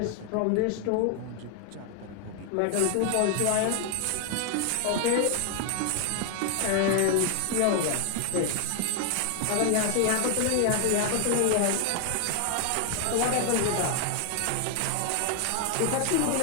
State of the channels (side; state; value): both; different; correlation 0.00